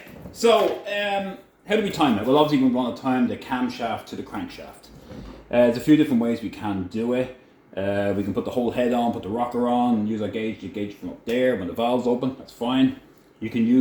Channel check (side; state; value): both; identical; correlation 1.00